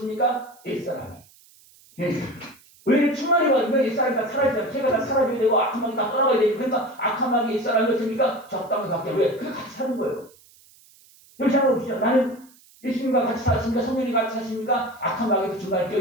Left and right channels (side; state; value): right; noise; hiss, 27 dB below the sound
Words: 옛사람이. 왜 충만히 받으면 옛사람이 다 사라지잖아요. 제가 다 사라져야 되고 악한 마귀 다 떠나가야 되고, 그러니까 악한 마귀 옛사람이 어떻습니까? 적당히 받게. 왜? 그게 같이 사는 거예요. 여기 생각해 보시죠. 나는 예수님과 같이 사십니까? 성령이 같이 사십니까? 악한 마귀도 중간에